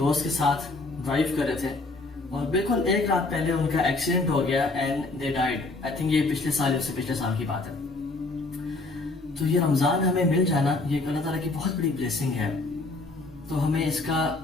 کے ساتھ ڈرائیو کر رہے تھے اور بالکل ایک رات پہلے ان کا ایکسیڈنٹ ہو گیا and they died. I think یہ پچھلے سال کی بات ہے۔ تو یہ رمضان ہمیں مل جانا یہ اللہ تعالیٰ کی بہت بڑی بلیسنگ ہے، تو ہمیں اس کا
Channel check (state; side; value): quieter; right; 3.3 dB